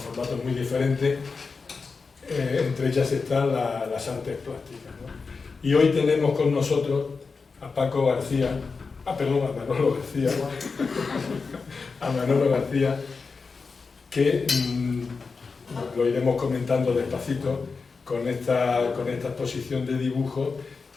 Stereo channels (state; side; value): quieter; right; 4.7 dB